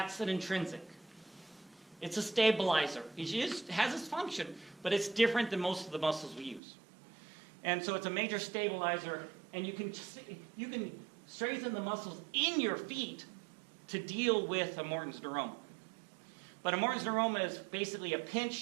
an intrinsic. It's a stabilizer. It has its function, but it's different than most of the muscles we use. And so it's a major stabilizer, and you can strengthen the muscles in your feet to deal with a Morton's neuroma. But a Morton's neuroma is basically a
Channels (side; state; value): left; drops out; at 6.6 s